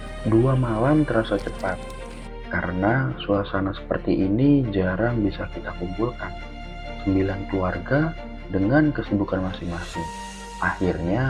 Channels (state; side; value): identical; both; correlation 1.00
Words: 2 malam terasa cepat, karena suasana seperti ini jarang bisa kita kumpulkan. 9 keluarga dengan kesibukan masing-masing,